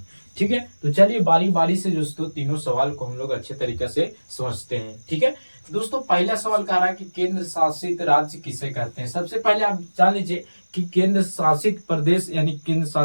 ठीक है, तो चलिए बारी बारी से दोस्तों तीनों सवाल को हम लोग अच्छे तरीके से समझते हैं। ठीक है, दोस्तों पहला सवाल कह रहा है कि केंद्र शासित राज्य किसे कहते हैं। सबसे पहले आप जान लीजिए कि केंद्र शासित प्रदेश यानी केंद्र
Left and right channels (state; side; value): inverted; both; correlation -1.00